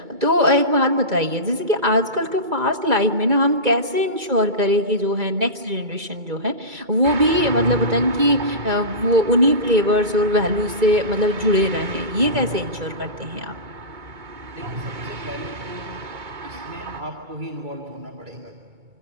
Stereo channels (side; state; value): left; late; 2.3 ms